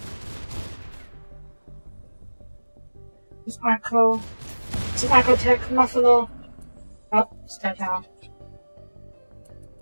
It's Arco. It's an Arcotech Muffalo. Oh, it's dead now.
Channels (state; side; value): inverted; both; correlation -1.00